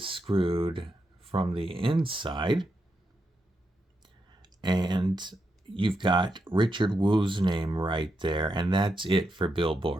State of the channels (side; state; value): both; normal; correlation 0.84